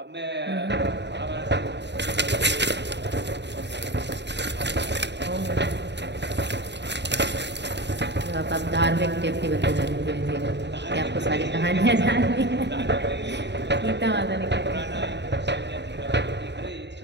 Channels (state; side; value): late; left; 0.51 ms